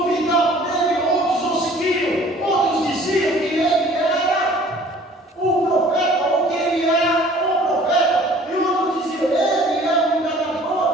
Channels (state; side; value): normal; both; correlation 0.51